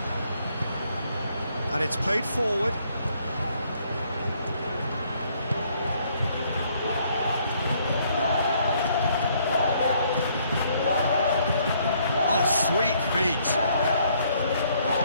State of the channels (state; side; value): inverted; both; correlation -0.67